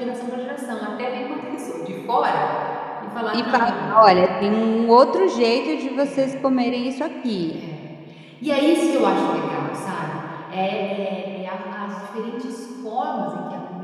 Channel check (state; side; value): identical; both; correlation 1.00